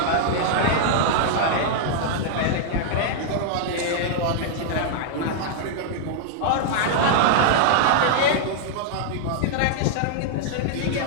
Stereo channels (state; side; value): different; both; correlation -0.01